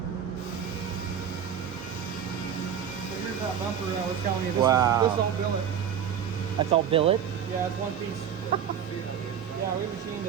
here's that bumper that I was telling you. Wow. This is all billet. That's all billet? Yeah, it's one piece. Yeah, we machined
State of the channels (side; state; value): left; quieter; 8.4 dB